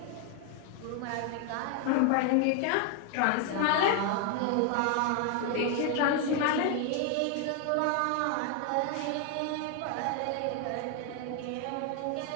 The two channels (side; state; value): both; different; correlation 0.01